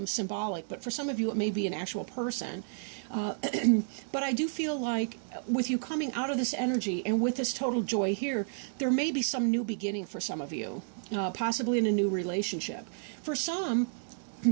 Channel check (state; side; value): silent; left; digital silence